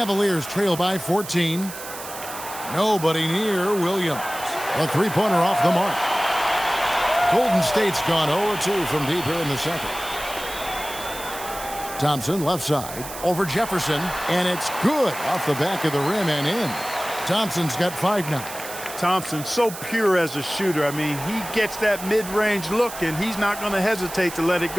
trail by 14. Nobody near Williams. A three-pointer off the mark. Golden State's gone 0-2 from deep here in the second. Thompson left side over Jefferson, and it's good off the back of the rim and in. Thompson's got 5 now. Thompson, so pure as a shooter. I mean, he gets that mid-range look, and he's not going to hesitate to let it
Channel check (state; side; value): noise; right; hiss, 11 dB below the sound